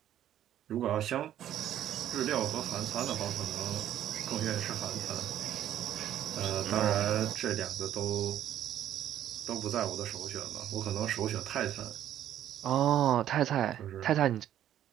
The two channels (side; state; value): left; quieter; 11.4 dB